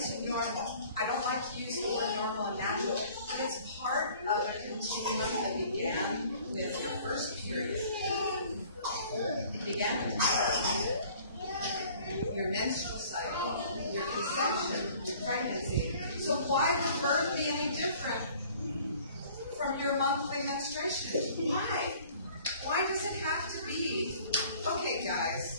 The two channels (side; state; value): both; inverted; correlation -0.52